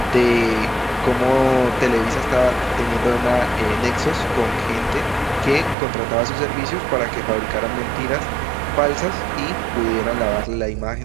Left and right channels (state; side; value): drops out; left; at 5.8 s